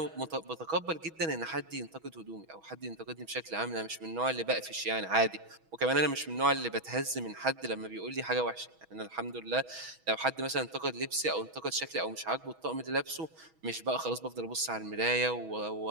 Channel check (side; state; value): left; late; 6.2 ms